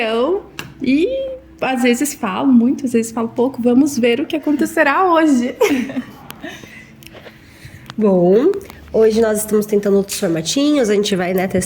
e às vezes falo muito, às vezes falo pouco. Vamos ver o que acontecerá hoje. Bom, hoje nós estamos tentando outros formatinhos, a gente vai,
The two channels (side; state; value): both; identical; correlation 1.00